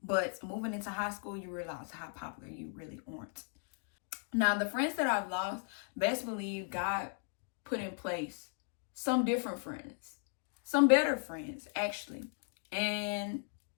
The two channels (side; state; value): right; silent; 53 dB below the other